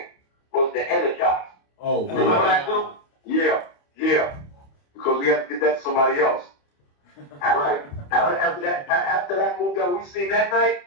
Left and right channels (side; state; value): right; late; 28 ms